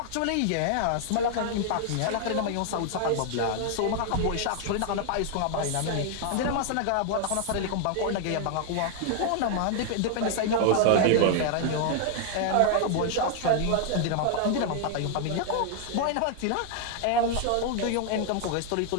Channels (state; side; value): different; both; correlation 0.00